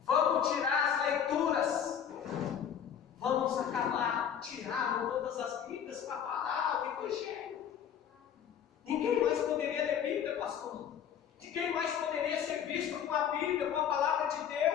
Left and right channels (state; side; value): quieter; right; 8.7 dB